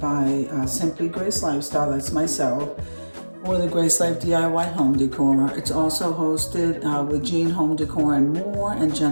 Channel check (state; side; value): inverted; both; correlation -1.00